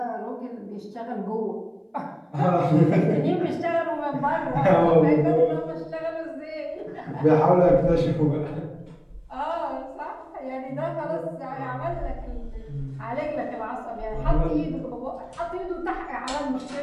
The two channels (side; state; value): both; identical; correlation 1.00